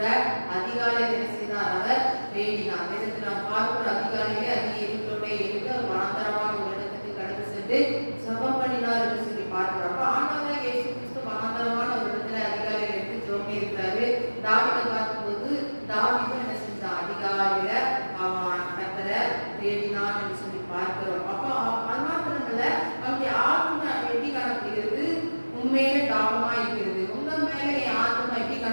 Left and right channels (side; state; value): both; inverted; correlation -1.00